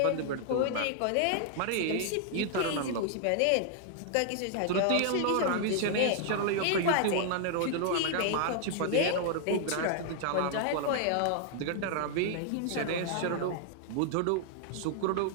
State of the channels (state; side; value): different; both; correlation 0.00